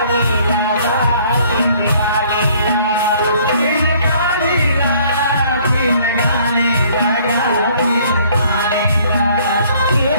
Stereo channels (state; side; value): inverted; both; correlation -0.59